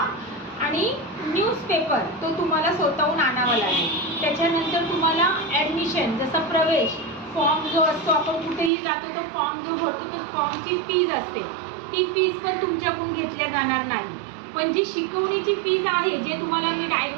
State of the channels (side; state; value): left; drops out; at 8.7 s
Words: आणि न्यूजपेपर तो तुम्हाला स्वतःहून आणावा लागेल. त्याच्यानंतर तुम्हाला ॲडमिशन, जसं प्रवेश फॉर्म जो असतो, आपण कुठेही जातो तो फॉर्म जो भरतो तो फॉर्मची फीज असते, ती फीज पण तुमच्याकडून घेतल्या जाणार नाही. पण जी शिकवणीची फीज आहे, जे तुम्हाला मी